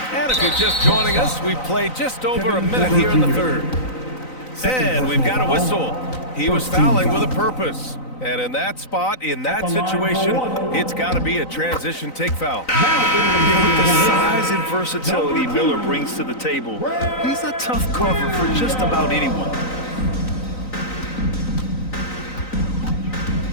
And if you're just joining us, we've played just over a minute here in the third. And we've got a whistle. He was fouling with a purpose. And in that spot, in that situation, it's got to be a transition take foul. With the size and versatility Miller brings to the table, he's a tough cover for just about anyone.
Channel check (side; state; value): right; late; 3.9 ms